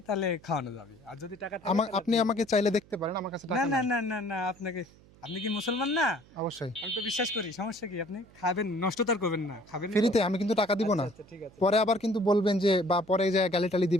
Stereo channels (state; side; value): noise; right; hum, 26 dB below the sound